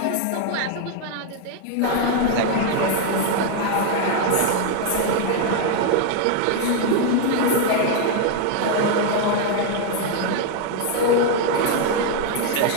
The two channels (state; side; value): different; both; correlation 0.00